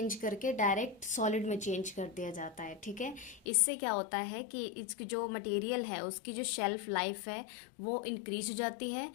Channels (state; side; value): drops out; right; at 3.4 s